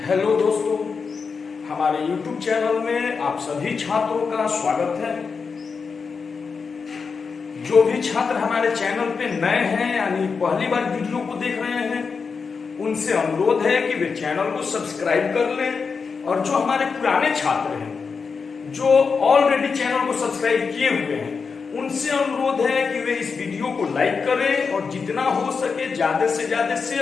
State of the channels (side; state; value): right; quieter; 5.3 dB